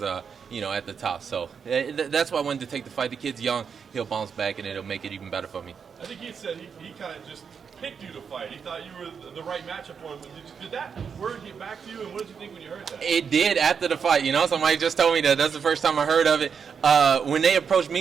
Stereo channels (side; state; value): left; quieter; 6.5 dB